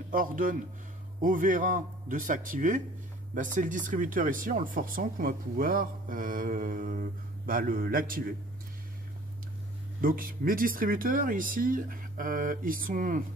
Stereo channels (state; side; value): normal; both; correlation 0.50